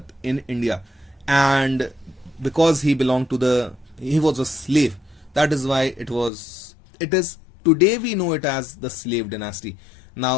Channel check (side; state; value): right; drops out; at 6.3 s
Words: in India. And because he was a slave, that is why it is today we know it as the slave dynasty.